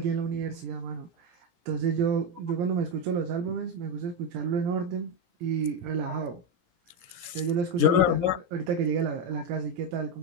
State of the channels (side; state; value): left; late; 17 ms